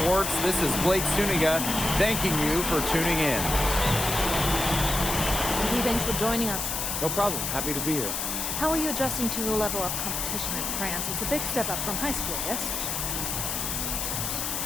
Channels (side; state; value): left; noise; hiss, 2 dB below the sound